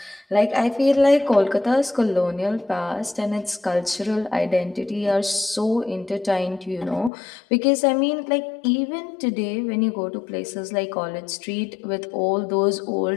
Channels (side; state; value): right; drops out; at 7.1 s